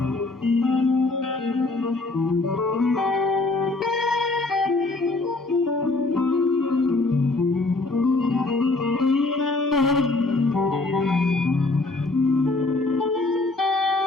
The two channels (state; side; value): quieter; right; 3.2 dB